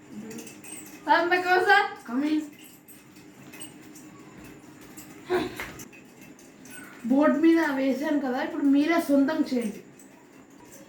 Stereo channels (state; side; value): identical; both; correlation 1.00